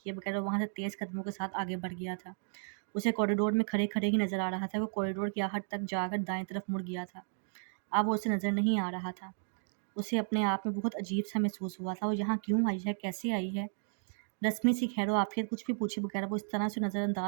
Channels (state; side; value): silent; left; digital silence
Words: بغیر وہ وہاں سے تیز قدموں کے ساتھ آگے بڑھ گیا تھا. اسے کوریڈور میں کھڑے ہی نظر آ رہا تھا. وہ کوریڈور کی آخر تک جا کر دائیں طرف مڑ گیا تھا. اب وہ اسے نظر نہیں آ رہا تھا. اسے اپنے آپ میں بہت عجیب سا محسوس ہوا تھا. وہ یہاں کیوں آئی ہے؟ کیسے آئی ہے؟ رسمی سی خیر و عافیت کچھ بھی پوچھے بغیر وہ اس طرح سے نظر